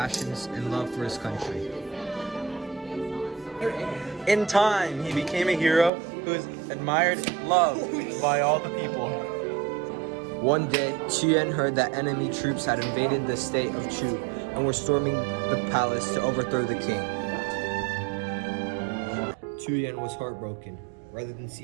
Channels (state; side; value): drops out; left; at 5.9 s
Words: and love for his country. In time, he became a hero who was admired and loved by all the people. One day, Chu Yuan heard that enemy troops had invaded the state of Chu and were storming the palace to overthrow the king. Chu Yuan was heartbroken. Rather than see